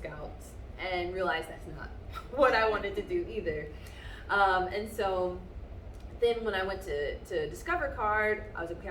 and realized that's not what I wanted to do either. And so then when I went to Discover Card, I was like, okay,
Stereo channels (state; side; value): identical; both; correlation 1.00